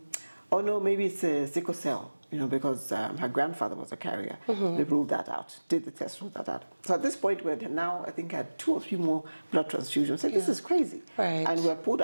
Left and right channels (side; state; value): both; inverted; correlation -1.00